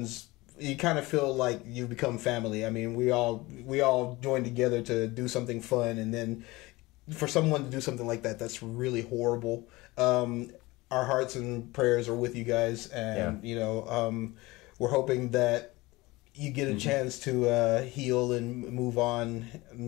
you kind of feel like you've become family. I mean, we all join together to do something fun, and then for someone to do something like that, that's really horrible. Our hearts and prayers are with you guys, and you know, we're hoping that you get a chance to heal and move on.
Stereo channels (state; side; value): quieter; right; 21.3 dB